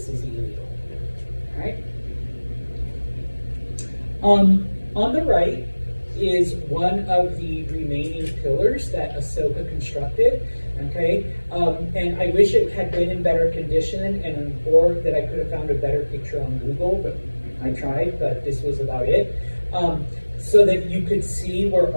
is illegal, all right? On the right is one of the remaining pillars that Ahsoka constructed, okay? And I wish it had been in better condition or that I could have found a better picture on Google, but I tried, but this was about it. So that you could see where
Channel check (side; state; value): both; inverted; correlation -1.00